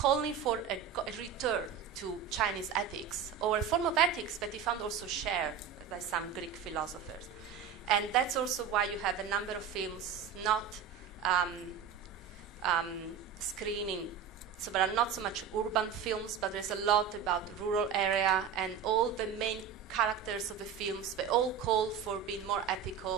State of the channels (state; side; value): quieter; left; 7.4 dB